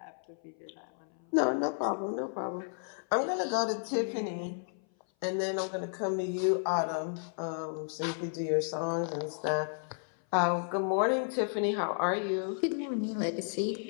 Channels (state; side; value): silent; right; 56 dB below the other